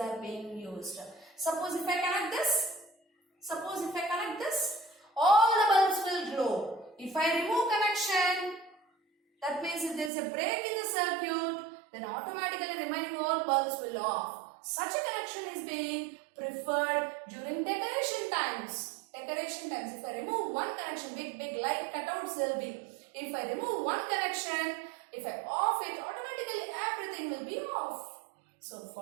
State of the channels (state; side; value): drops out; left; at 10.1 s